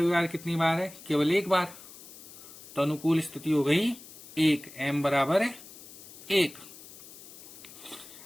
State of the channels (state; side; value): noise; left; hiss, 17 dB below the sound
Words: कितनी बार है? केवल एक बार। तो अनुकूल स्थिति हो गई 1, m बराबर है 1।